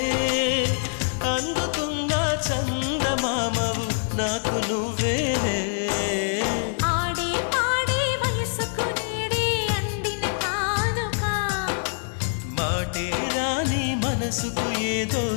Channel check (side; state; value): right; silent; digital silence